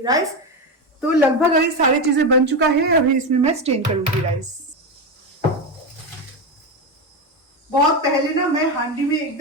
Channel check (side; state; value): both; normal; correlation 0.14